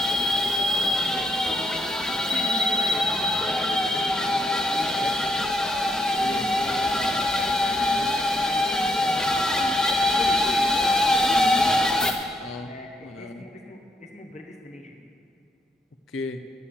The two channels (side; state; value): both; normal; correlation 0.75